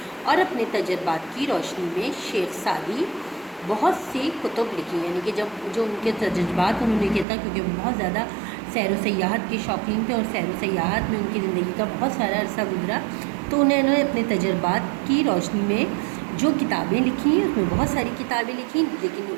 اور اپنے تجربات کی روشنی میں شیخ سعدی بہت سی کتب لکھی، یعنی کہ جو ان کے تجربات انہوں نے کیا تھا، کیونکہ وہ بہت زیادہ سیر و سیاحت کے شوقین تھے اور سیر و سیاحت میں ان کی زندگی کا بہت سارا عرصہ گزرا، تو انہوں نے اپنے تجربات کی روشنی میں جو کتابیں لکھی ہیں، اس میں بہت ساری کتابیں لکھی، لیکن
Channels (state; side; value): drops out; left; at 7.2 s